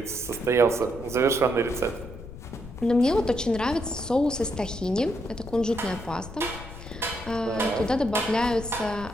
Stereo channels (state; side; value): noise; left; rumble, 13 dB below the sound